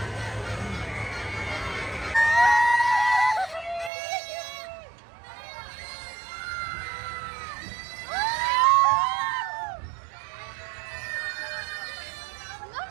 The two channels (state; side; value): drops out; left; at 3.9 s